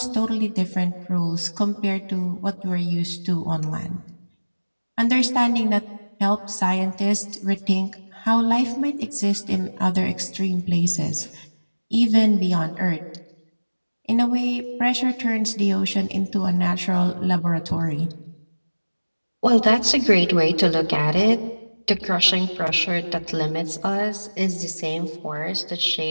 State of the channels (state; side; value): inverted; both; correlation -1.00